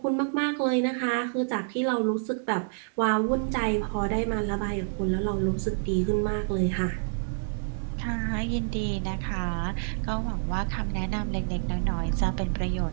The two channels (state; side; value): silent; left; 59 dB below the other